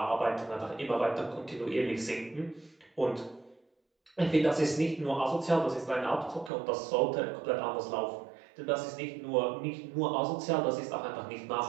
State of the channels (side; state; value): left; drops out; at 6.5 s